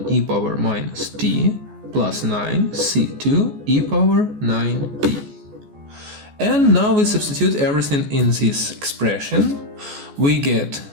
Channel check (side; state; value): left; late; 14 ms